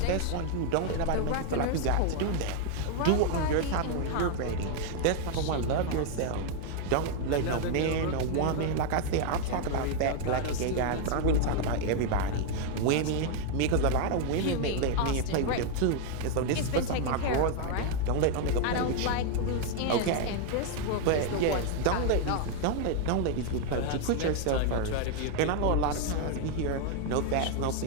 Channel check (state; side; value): different; both; correlation 0.00